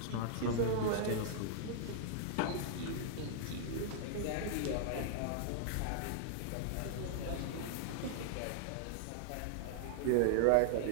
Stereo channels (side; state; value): both; different; correlation -0.01